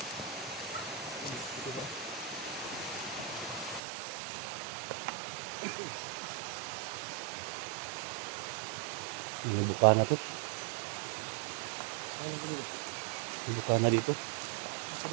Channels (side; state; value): left; drops out; at 3.8 s